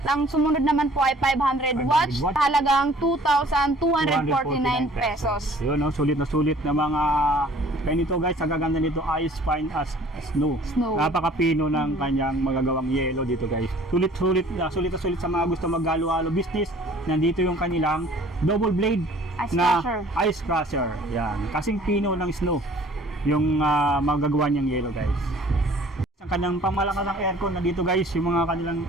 ang sumunod naman po ay 500 watts, 500 watts. halagang 2,249 pesos. Yun, no? Sulit na mga kaya nito, guys, ang gaganda nito, ice fine as snow. Snow. Napakapino ng kanyang magagawang yelo dito, guys. Sulit na sulit sa mga gusto maghalo-halo business. Nandito yung kanilang double blade Ice na crusher. ice crusher. Yan, kasing pino ng snow yung magagawa niyang yelo, guys. Ang kanyang pamalakas ng aircon na dito, guys, yung mga kanilang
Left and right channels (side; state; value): both; normal; correlation 0.52